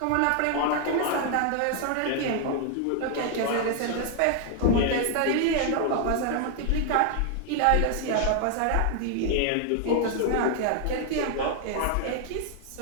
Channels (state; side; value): different; both; correlation 0.00